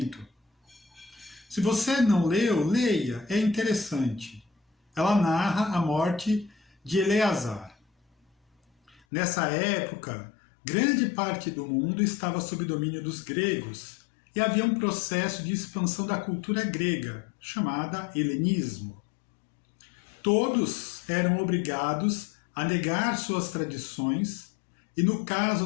Se você não leu, leia, é interessante. Ela narra a morte de Eleazar. Nessa época, grande parte do mundo estava sob domínio dos gregos e havia um processo de expansão da cultura grega, chamada helenismo. Todos eram obrigados a negar suas tradições e, no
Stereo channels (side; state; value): right; drops out; at 9.0 s